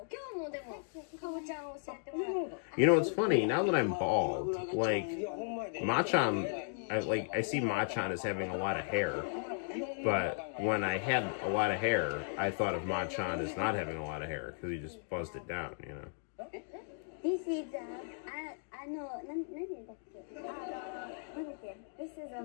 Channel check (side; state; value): right; silent; digital silence